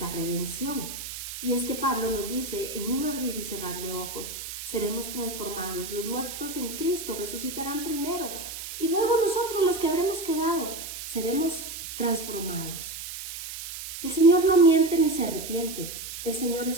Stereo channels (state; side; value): noise; right; hiss, 9 dB below the sound